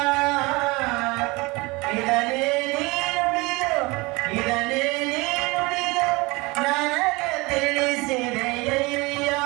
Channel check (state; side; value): quieter; left; 24.3 dB